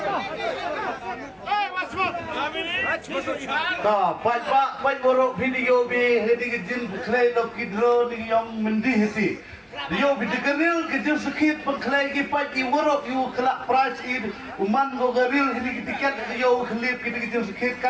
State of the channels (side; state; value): both; identical; correlation 1.00